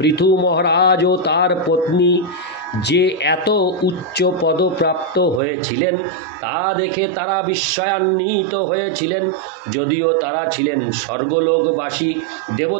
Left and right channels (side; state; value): left; drops out; at 5.4 s